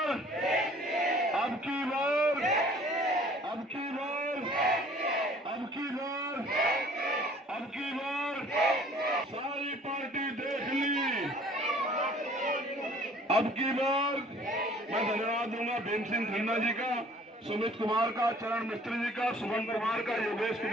अब की बार, अब की बार, अब की बार, अब की बार सारी पार्टी देख ली। अब की बार मैं धन्यवाद दूंगा भीम सिंह खन्ना जी का, सुमित कुमार का, चरण मिस्त्री जी का, सुमन कुमार का, योगेश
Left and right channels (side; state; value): both; normal; correlation 0.53